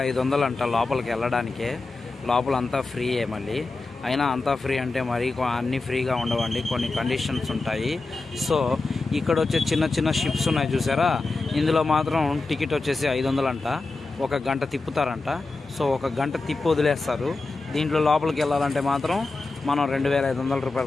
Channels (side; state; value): right; quieter; 3.6 dB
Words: అంట లోపలికి వెళ్ళడానికే. లోపల అంతా ఫ్రీయే. మళ్ళీ అయినా అంతా ఫ్రీ అంటే మరి అన్నీ ఫ్రీగా ఉండవండి, కొన్ని కండిషన్స్ ఉంటాయి. సో ఇక్కడ వచ్చే చిన్న చిన్న షిప్స్ ఉన్నాయి చూసారా, ఇందులో మాత్రం టికెట్ వచ్చేసి 500 అంట. 1 గంట తిప్పుతారంట. సో 1 గంట తిప్పి వదిలేస్తారు. దీంట్లో లోపలికి వెళ్ళాలంటే మాత్రం మనం 2500